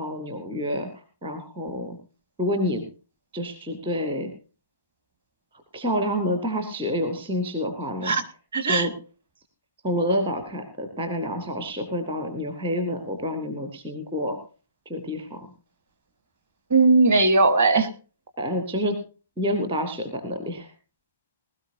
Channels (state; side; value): inverted; both; correlation -0.46